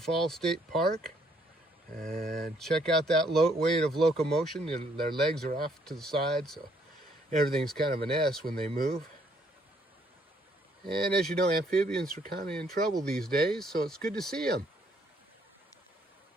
State Park. And check out that weight of locomotion. Their legs are off to the side, so everything's kind of an S when they move. And as you know, amphibians are kind of in trouble these days, so it's good to see them.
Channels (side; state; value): both; normal; correlation 0.67